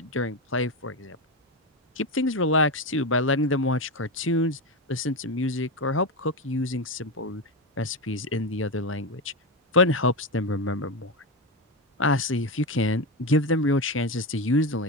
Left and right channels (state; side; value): normal; both; correlation 0.15